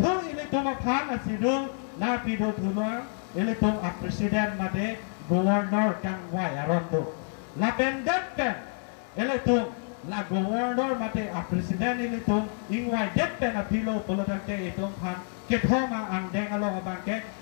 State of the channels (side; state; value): right; silent; 59 dB below the other